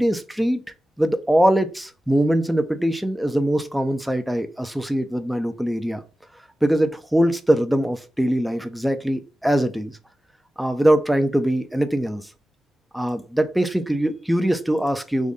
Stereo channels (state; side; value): normal; both; correlation 0.95